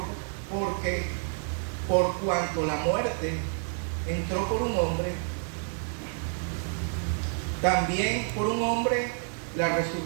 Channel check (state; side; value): silent; left; 59 dB below the other